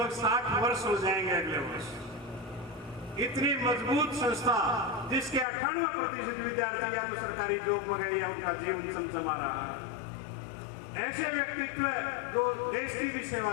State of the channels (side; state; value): right; drops out; at 5.5 s